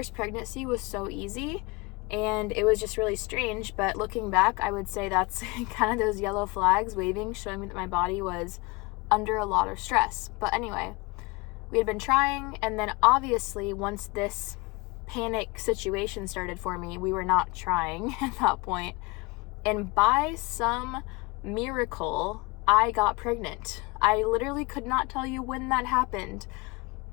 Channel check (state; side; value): quieter; right; 25.3 dB